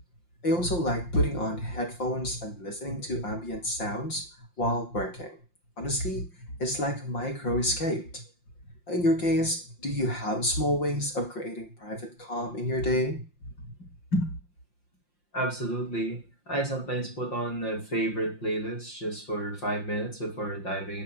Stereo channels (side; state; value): right; late; 5.7 ms